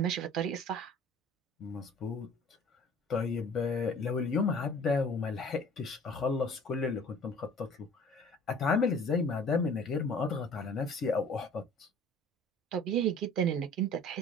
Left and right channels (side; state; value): both; normal; correlation 0.48